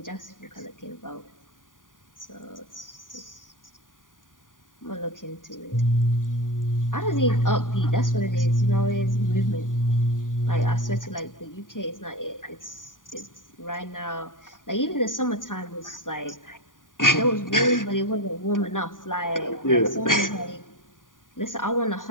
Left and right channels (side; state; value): right; late; 0.89 ms